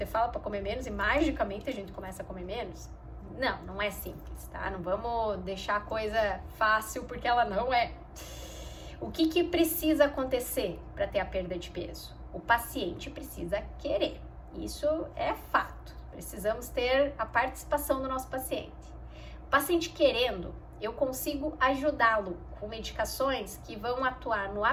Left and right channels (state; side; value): identical; both; correlation 1.00